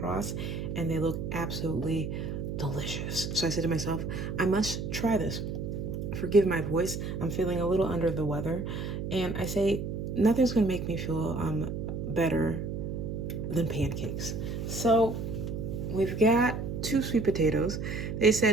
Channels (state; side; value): noise; right; hum, 4 dB below the sound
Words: and they look absolutely delicious. So I said to myself, I must try this. Forgive my voice, I'm feeling a little under the weather. And I say, nothing's gonna make me feel better than pancakes. So we've got 2 sweet potatoes. They